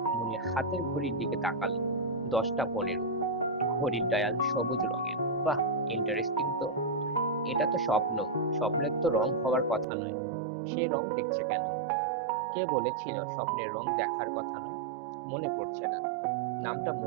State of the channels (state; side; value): drops out; left; at 9.9 s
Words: মুনির হাতের ঘড়ির দিকে তাকালো। 10টা 15। ঘড়ির ডায়াল সবুজ রঙের। বাহ, ইন্টারেস্টিং তো। এটা তো স্বপ্ন। স্বপ্নের তো রং হওয়ার কথা নয়। সে রং দেখছে কেন? কে বলেছিল স্বপ্নের রং দেখার কথা নয়? মনে পড়ছে না। নামটা